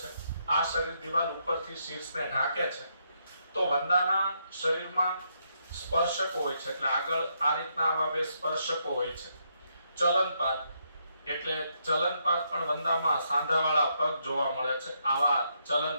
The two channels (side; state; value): both; inverted; correlation -0.77